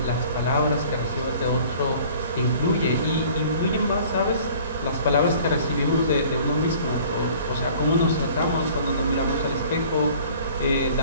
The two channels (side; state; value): both; inverted; correlation -0.50